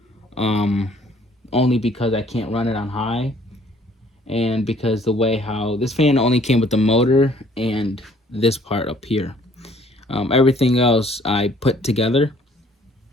Um, Only because I can't run it on high, and because the way how this fan only came with the motor and this part up here. Everything else I put together,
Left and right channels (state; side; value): normal; both; correlation 0.59